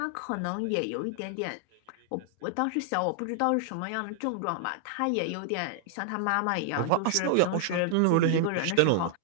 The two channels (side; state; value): both; different; correlation 0.00